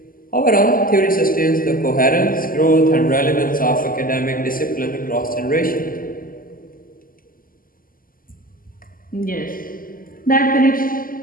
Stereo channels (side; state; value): right; late; 0.41 ms